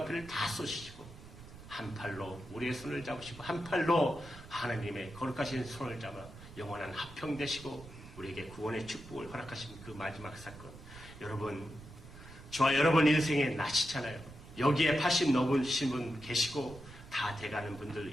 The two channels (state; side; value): noise; right; rumble, 17 dB below the sound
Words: 다 쏘시고 한 팔로 우리의 손을 잡으시고 한 팔로 하나님의 거룩하신 손을 잡아 영원한 화평되시고 우리에게 구원의 축복을 허락하신 그 마지막 사건. 여러분, 저와 여러분 인생에 나시잖아요. 여기에 80 넘으신 분 계시고 다 돼가는 분들